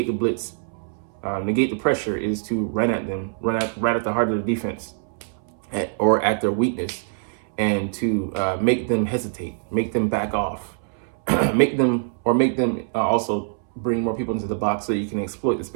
the blitz, negate the pressure, is to run at them, right at the heart of the defense, or at their weakness, and to make them hesitate, make them back off, make them also bring more people into the box so you can exploit the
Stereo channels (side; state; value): left; silent; 63 dB below the other